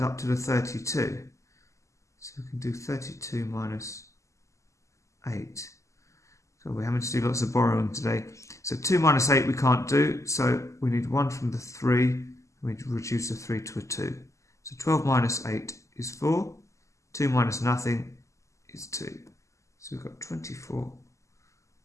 up to the 32. So we can do 32 minus 8. So we're having to do lots of borrowing today. So 2 minus 8 we can't do. So we need 1 from the 3. We reduce the 3 to a 2. So 12 minus 8 is 4. 2 minus nothing is 2. So we've got 24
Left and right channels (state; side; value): late; right; 0.15 ms